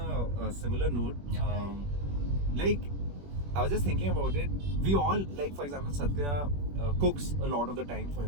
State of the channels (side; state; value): left; late; 21 ms